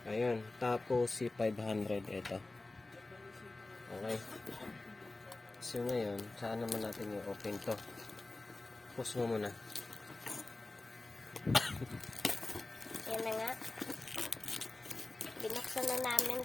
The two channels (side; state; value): right; quieter; 3.1 dB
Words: Ayun, Tapo C500 ito. Okay. So ngayon, saan naman natin i-open to? Pause mo muna. Yan na nga. Binuksan na namin